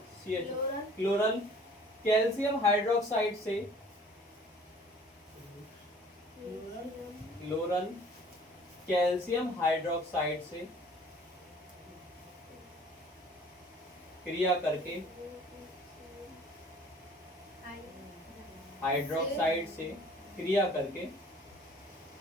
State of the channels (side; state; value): both; normal; correlation 0.52